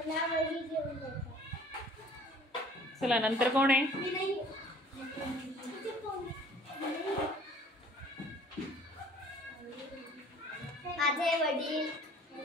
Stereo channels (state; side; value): normal; both; correlation 0.52